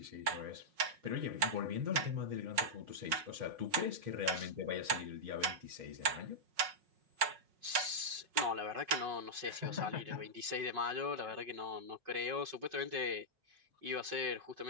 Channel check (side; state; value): left; late; 5.4 ms